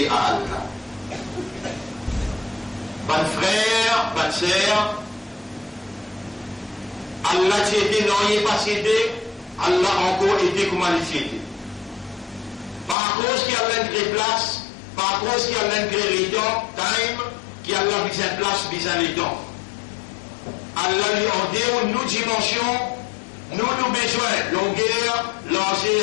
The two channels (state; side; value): drops out; right; at 13.0 s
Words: à Allah. Bon frère, bonne sœur, Allah t'a été non, il n'est pas cédé, Allah encore été comme il était. Par cause qu'il y a l'un de place, par cause qu'il y a l'un de temps, time, qu'il y a l'un de place, besoin de temps. Allah lui a dit, nous dimensions, nous besoin, longueur,